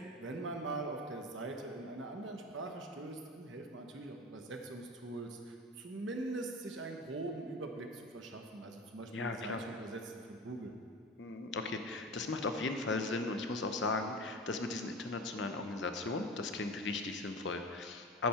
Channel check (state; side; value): normal; both; correlation 0.32